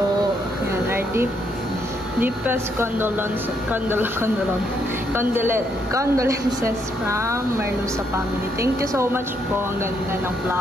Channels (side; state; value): both; normal; correlation 0.74